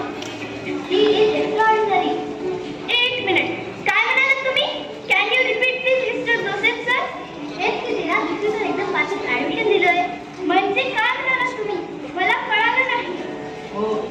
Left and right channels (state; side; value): identical; both; correlation 1.00